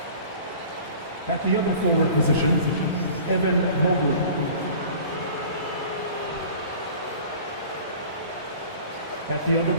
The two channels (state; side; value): inverted; both; correlation -0.44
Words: At the other forward position, Evan Mobley. At the other